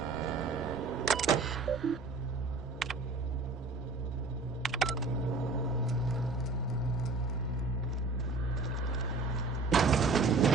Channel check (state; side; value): quieter; left; 3.6 dB